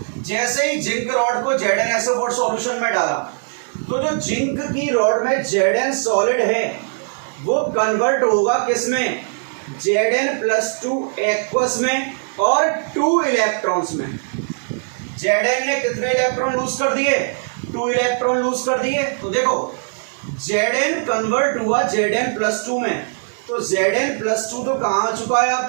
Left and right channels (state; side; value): silent; left; 66 dB below the other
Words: जैसे ही जिंक रॉड को ZnSO4 सॉल्यूशन में डाला, तो जो जिंक की रॉड में Zn सॉलिड है वो कन्वर्ट होगा किसमें? Zn+2 एक्वस में और 2 इलेक्ट्रॉन्स में। Zn ने कितने इलेक्ट्रॉन लूज कर दिए? 2 इलेक्ट्रॉन लूज कर दिए। तो देखो, Zn कन्वर्ट हुआ Zn+2 में, तो Zn+2 तो कहां आ चुका है